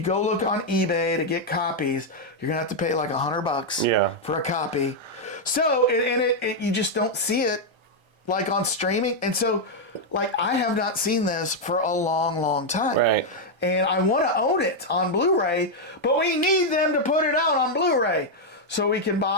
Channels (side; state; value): left; late; 1.3 ms